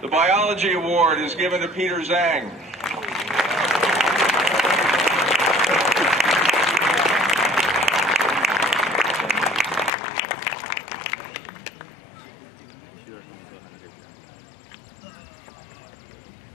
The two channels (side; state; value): right; drops out; at 9.9 s